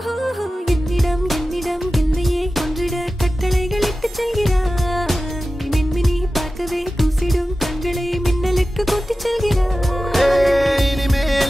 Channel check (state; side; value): normal; both; correlation 0.94